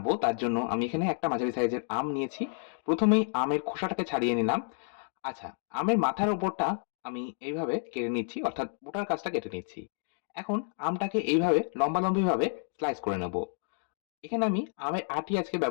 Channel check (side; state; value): right; silent; 58 dB below the other